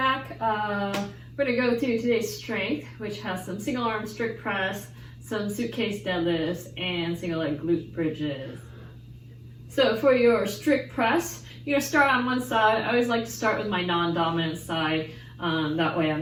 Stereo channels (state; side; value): identical; both; correlation 1.00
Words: We're going to go through today's strength, which has some single arm strict press, some suitcase deadlifts, and single leg glute bridges. So for your strict press, you're going to start on one side. I always like to start with my non-dominant side. That way I'm